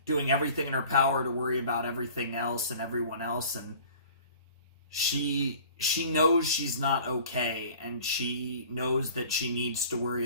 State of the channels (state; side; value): inverted; both; correlation -0.47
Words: doing everything in her power to worry about everything else and everyone else, and she knows she's not okay, and she knows that she needs to worry